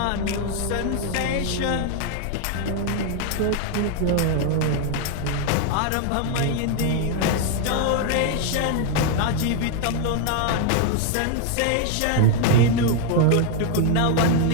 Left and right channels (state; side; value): different; both; correlation 0.00